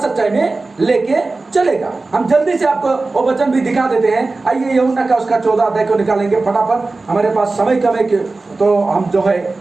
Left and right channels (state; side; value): quieter; left; 3.5 dB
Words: में लेके चलेगा। हम जल्दी से आपको वो वचन भी दिखा देते हैं। आइए यूहन्ना का उसका 14 अध्याय को निकालेंगे फटाफट, हमारे पास समय कम है तो हम जो है